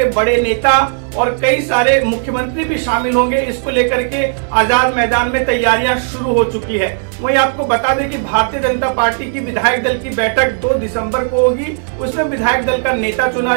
बड़े नेता और कई सारे मुख्यमंत्री भी शामिल होंगे। इसको लेकर के आजाद मैदान में तैयारियां शुरू हो चुकी है। वहीं आपको बता दें कि भारतीय जनता पार्टी की विधायक दल की बैठक 2 दिसंबर को होगी। उसमें विधायक दल का नेता चुना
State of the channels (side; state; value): left; silent; 69 dB below the other